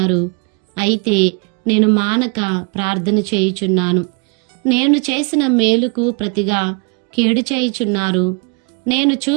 అయితే నేను మానక ప్రార్థన చేయుచున్నాను. నేను చేసిన మేలుకు ప్రతిగా కీడు చేయుచున్నారు. నేను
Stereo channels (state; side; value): quieter; left; 34.6 dB